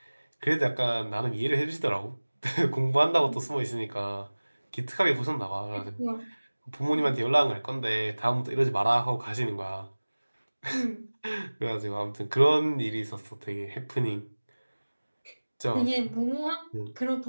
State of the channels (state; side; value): inverted; both; correlation -1.00